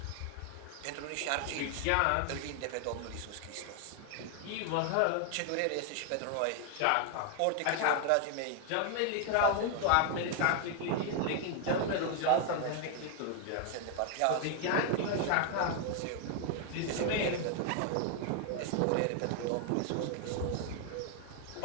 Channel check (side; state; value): both; different; correlation 0.00